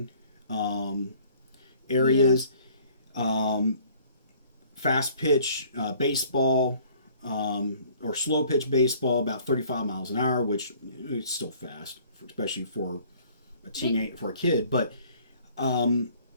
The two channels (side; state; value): both; inverted; correlation -0.56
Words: areas. Fast pitch baseball or slow pitch baseball about 35 miles an hour, which is still fast, especially for a kid. But